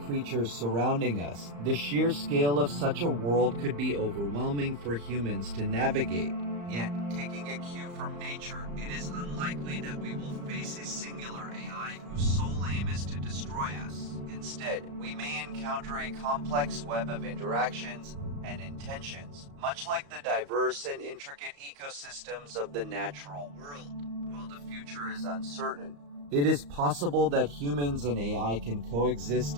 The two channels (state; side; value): late; left; 35 ms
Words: surrounding us. The sheer scale of such a world could be overwhelming for humans to navigate. Yet, taking a cue from nature, it is unlikely that we will face a singular AI whose sole aim is to destroy us. Instead, we may encounter a complex web of interactions and intentions, much like the diverse and intricate ecosystems of the natural world. While the future is uncertain, it is possible that humans and AI can coexist